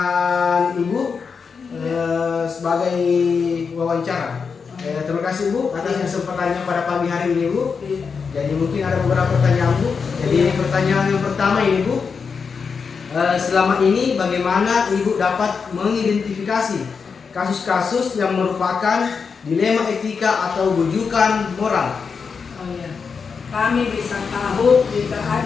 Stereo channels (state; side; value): quieter; right; 5.6 dB